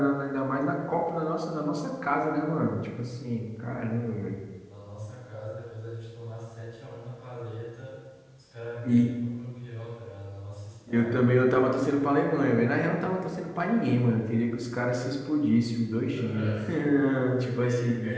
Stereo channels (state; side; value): identical; both; correlation 1.00